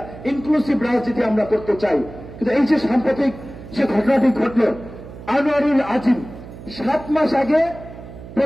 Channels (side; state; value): right; noise; hum, 15 dB below the sound